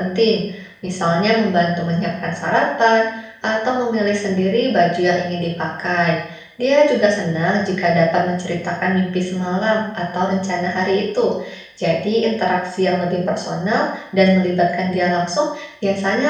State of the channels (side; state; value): both; identical; correlation 1.00